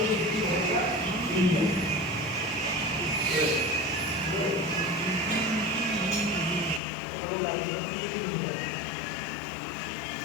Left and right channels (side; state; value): right; drops out; at 6.8 s